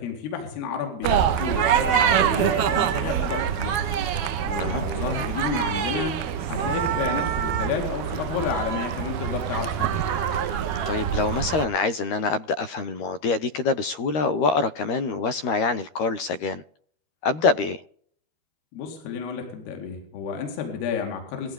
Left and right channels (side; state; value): right; late; 12 ms